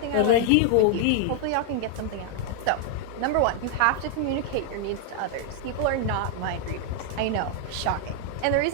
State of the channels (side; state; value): both; different; correlation 0.00